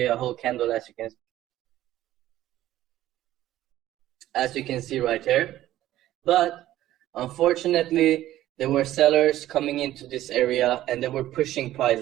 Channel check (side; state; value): left; quieter; 14.0 dB